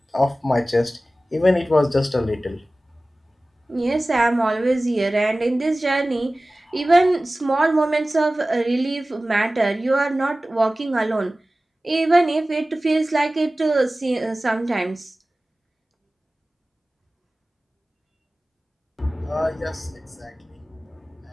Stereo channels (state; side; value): normal; both; correlation 0.97